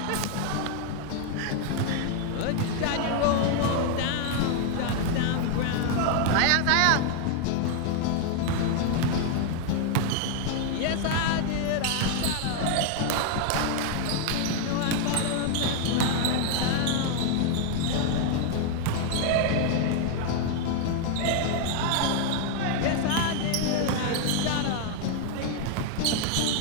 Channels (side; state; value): both; different; correlation 0.00